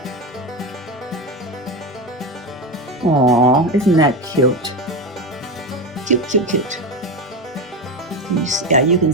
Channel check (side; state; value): both; normal; correlation 0.18